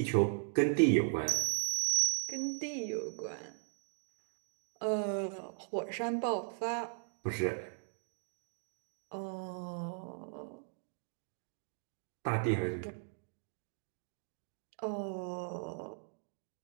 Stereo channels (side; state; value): left; silent; digital silence